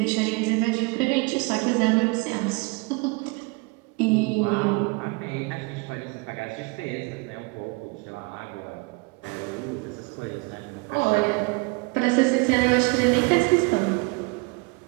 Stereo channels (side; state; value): left; quieter; 27.7 dB